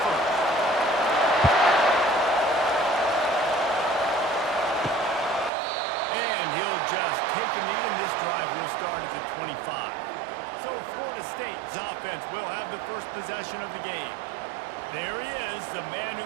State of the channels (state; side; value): drops out; left; at 5.5 s